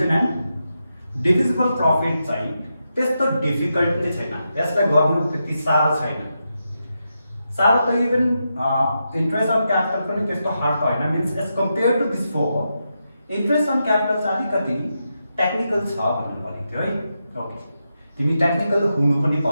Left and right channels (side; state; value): both; inverted; correlation -0.86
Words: and divisible profit चाहिँ त्यस्तो डिफिकल्ट नै छैन. यसलाई गर्नु त्यति साह्रो छैन. साह्रो त इभन इन्ट्रेस्ट अन क्यापिटल पनि त्यस्तो हार्ड त हैन. Means as compare to this four interest on capital चाहिँ अलिकति टेक्निकल छ भन्नु भनेको थियो है. ओके, तिमी टेक्निकल हुनु पनि